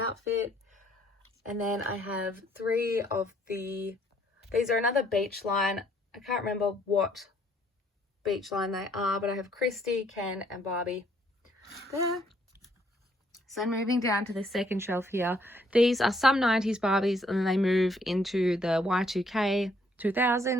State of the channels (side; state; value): both; normal; correlation 0.67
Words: And then I have 3 of these are another beach line. I can't remember what beach line they are, but I have Christy, Ken and Barbie there. So moving down to the second shelf here, these are some 90s Barbies, and then they move into the Y2K